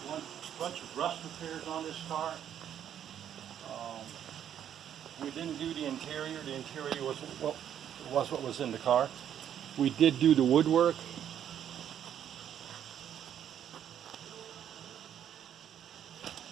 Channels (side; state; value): left; quieter; 9.8 dB